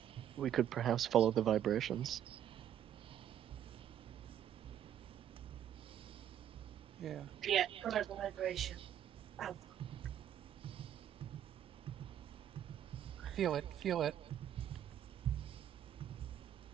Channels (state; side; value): quieter; left; 10.4 dB